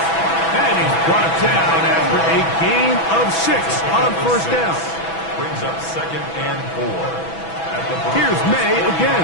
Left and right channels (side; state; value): right; late; 6.1 ms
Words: And he's brought down after a gain of 6 on 1st down. Brings up 2nd and 4. Here's May